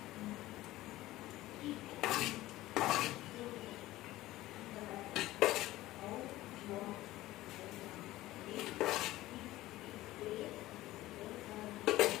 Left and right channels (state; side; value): quieter; right; 16.6 dB